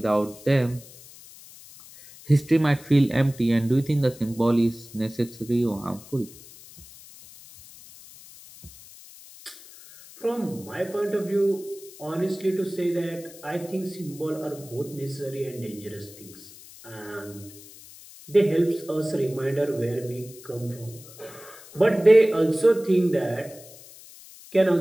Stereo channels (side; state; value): left; noise; hiss, 19 dB below the sound